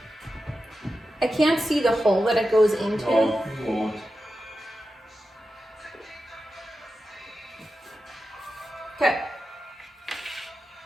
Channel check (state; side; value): normal; both; correlation 0.91